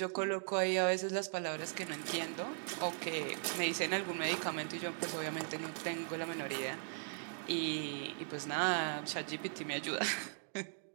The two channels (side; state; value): left; silent; digital silence